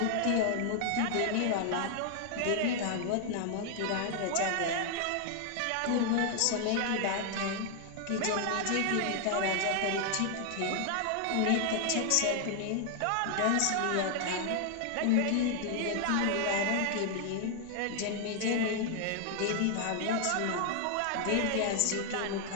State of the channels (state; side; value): different; both; correlation 0.00